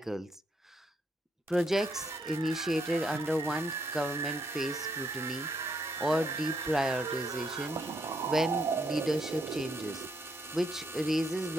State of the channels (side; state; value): both; normal; correlation 0.75